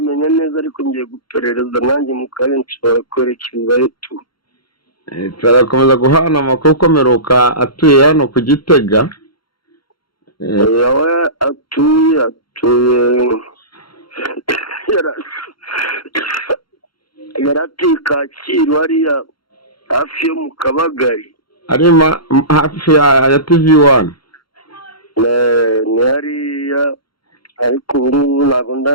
neza, ariko ngiye guperereza nanjye mu kanya nshobora kwerekezayo tu. Turakomeza guhana amakuru ko Meruka atuye hano ku Gitega. Yawe atuye yaratuye Kacyiru hariya hafi yo mu Kabagari. Arima hafi ya TV1. Ni hariya, ariko ubu ngubu ntabwo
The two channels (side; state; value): right; late; 0.73 ms